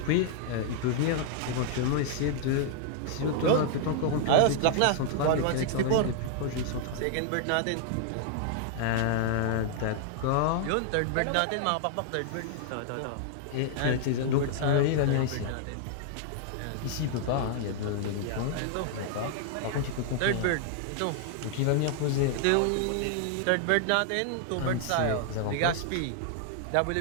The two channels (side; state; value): both; different; correlation -0.01